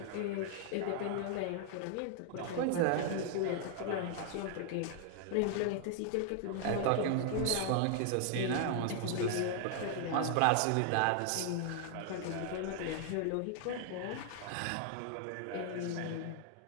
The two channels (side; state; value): both; different; correlation 0.00